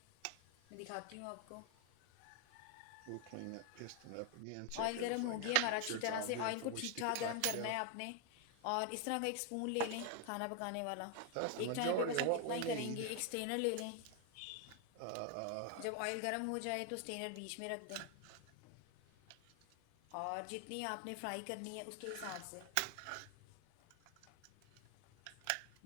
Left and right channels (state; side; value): different; both; correlation 0.01